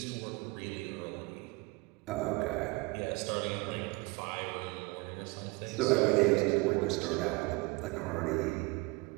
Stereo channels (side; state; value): left; quieter; 24.6 dB